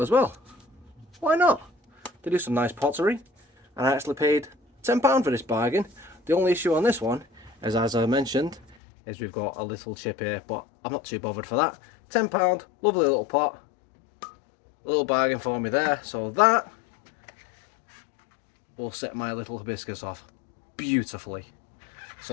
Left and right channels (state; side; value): drops out; right; at 8.8 s